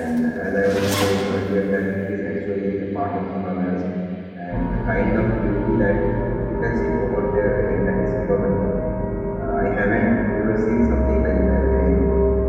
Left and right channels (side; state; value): both; identical; correlation 1.00